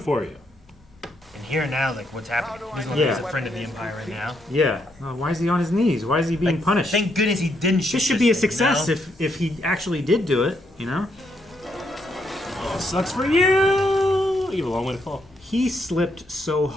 you. And here now, like, what's happening? He's a friend of the Empire right now. Yeah. Why is he on his knees? Why is he being punished? Thank goodness he didn't shoot This should be a thing, you success know? if he actually did do it, you know? Oh, sucks for you! You have a long way to fall. He slipped so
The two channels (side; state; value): both; normal; correlation 0.76